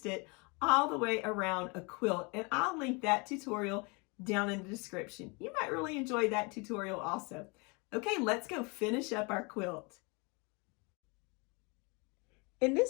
it all the way around a quilt. And I'll link that tutorial down in the description. You might really enjoy that tutorial also. Okay, let's go finish up our quilt. In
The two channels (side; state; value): right; quieter; 30.1 dB